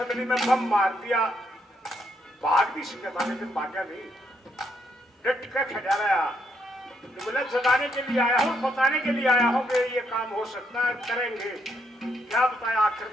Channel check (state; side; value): normal; both; correlation 0.75